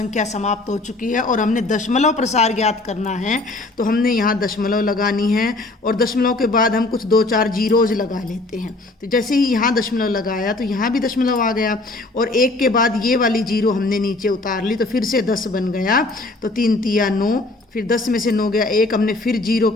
समाप्त हो चुकी है और हमने दशमलव प्रसार ज्ञात करना है। तो हमने यहाँ दशमलव लगानी है और दशमलव के बाद हम कुछ 2-4 जीरोज लगा लेते हैं। तो जैसे ही यहाँ दशमलव लगाया तो यहाँ भी दशमलव आ गया और 1 के बाद ये वाली जीरो हमने नीचे उतार ली। तो फिर से 10 बन गया। तो 3 तिया 9, फिर 10 में से 9 गया 1, हमने फिर जीरो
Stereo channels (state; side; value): quieter; right; 3.0 dB